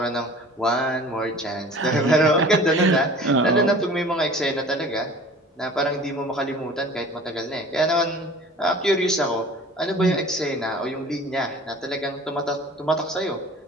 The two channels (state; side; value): normal; both; correlation 0.44